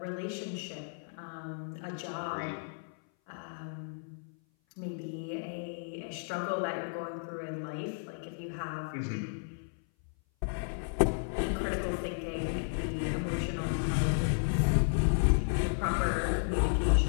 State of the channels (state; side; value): silent; right; 56 dB below the other